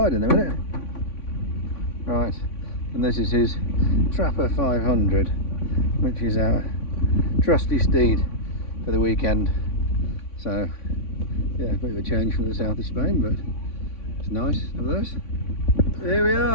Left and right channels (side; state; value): right; late; 3.5 ms